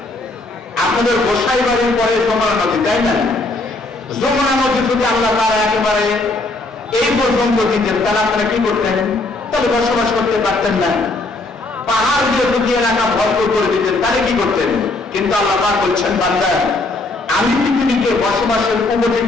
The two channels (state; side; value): quieter; right; 3.0 dB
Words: আপনাদের গোসাই বাড়ির পরে যমুনা নদী, তাই না? যমুনা নদী যদি আল্লাহ তারা একেবারে এই পর্যন্ত দিতেন, তাহলে আপনারা কি করতেন? তাহলে বসবাস করতে পারতেন না। পাহাড় দিয়ে যদি এলাকা ভরপুর করে দিতেন, তাহলে কি করতেন? কিন্তু আল্লাহ পাক বলছেন, বান্দা আমি পৃথিবীকে বসবাসের